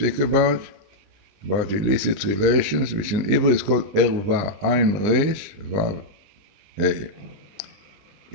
about illicit relations, which in Hebrew is called erva, Ayin Resh Vav Hey.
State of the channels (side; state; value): left; late; 20 ms